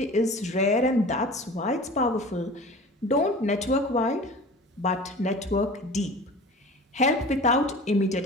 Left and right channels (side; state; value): both; normal; correlation 0.39